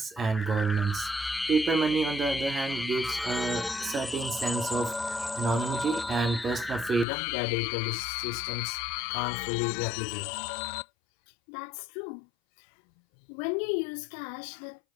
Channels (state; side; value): drops out; right; at 7.1 s